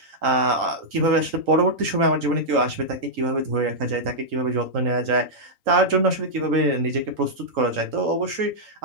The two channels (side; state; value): left; late; 3.8 ms